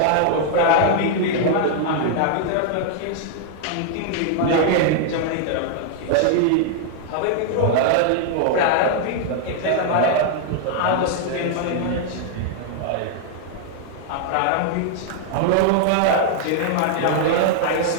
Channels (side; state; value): both; different; correlation 0.00